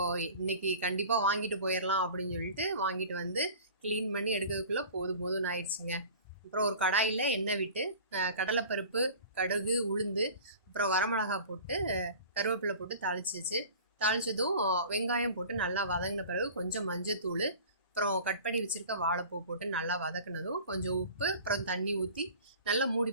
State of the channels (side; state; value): both; inverted; correlation -0.41